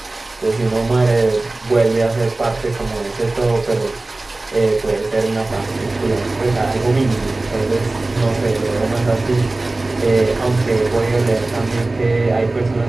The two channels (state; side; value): quieter; left; 3.0 dB